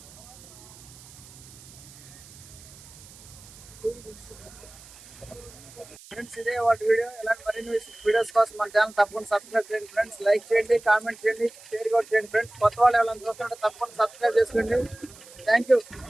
ఫ్రెండ్స్ ఇదే వాటి వీడియో. ఇలాంటి మరిన్ని వీడియోస్ కోసం మన ఛానల్ తప్పకుండా సబ్స్క్రైబ్ చేయండి ఫ్రెండ్స్. లైక్ చేయండి, కామెంట్ చేయండి, షేర్ కూడా చేయండి ఫ్రెండ్స్. కొత్త వాళ్ళు ఎవరైనా చూస్తుంటే తప్పకుండా సబ్స్క్రైబ్ చేసుకోండి. Thank you.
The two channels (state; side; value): noise; right; hiss, 20 dB below the sound